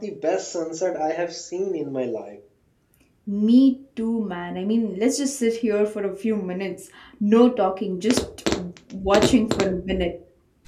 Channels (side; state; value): both; identical; correlation 1.00